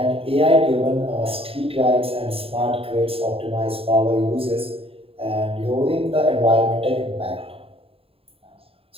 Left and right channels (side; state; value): left; late; 0.27 ms